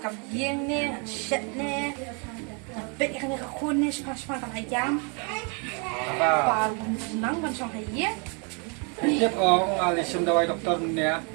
kam yeng ne, shet ne. Bet ikan ka kun ne spas-spas kan ayam. Apa? Baru nang ban song haye. Tiap orang alisum dawai doktor ni ya.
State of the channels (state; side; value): quieter; left; 35.5 dB